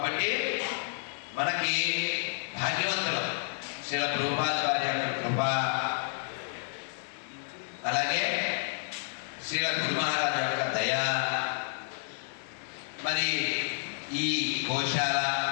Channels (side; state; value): right; silent; 57 dB below the other